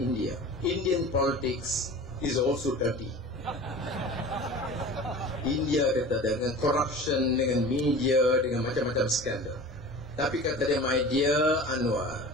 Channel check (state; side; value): normal; both; correlation 0.38